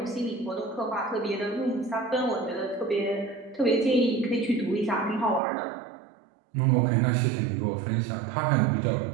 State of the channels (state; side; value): drops out; left; at 5.4 s